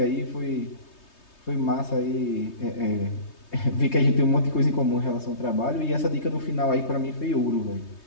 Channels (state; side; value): late; right; 3.2 ms